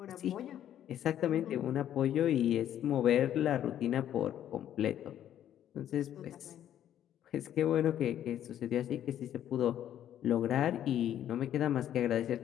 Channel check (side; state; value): right; quieter; 10.9 dB